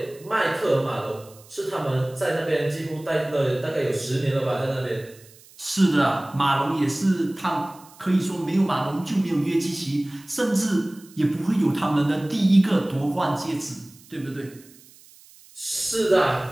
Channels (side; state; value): right; noise; hiss, 24 dB below the sound